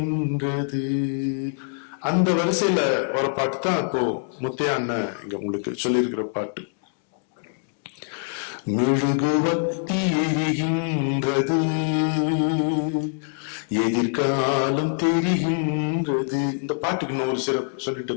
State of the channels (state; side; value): silent; right; 62 dB below the other